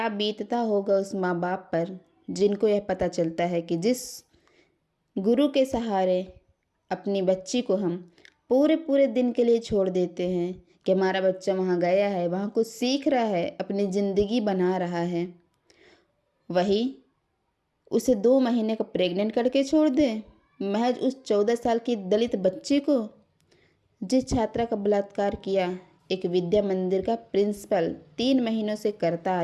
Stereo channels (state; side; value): identical; both; correlation 1.00